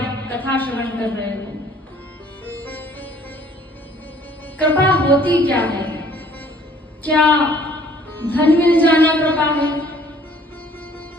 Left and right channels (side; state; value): both; normal; correlation 0.57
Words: कथा श्रवण कर रहे हो। कृपा होती क्या है? क्या धन मिल जाना कृपा है?